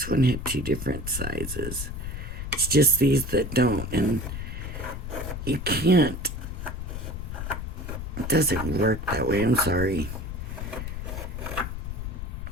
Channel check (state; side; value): noise; left; rumble, 6 dB below the sound